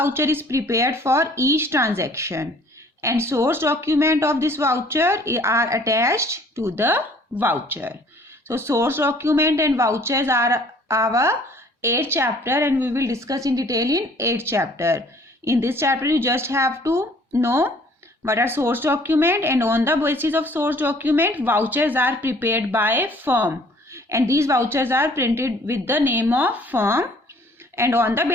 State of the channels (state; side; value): normal; both; correlation 0.56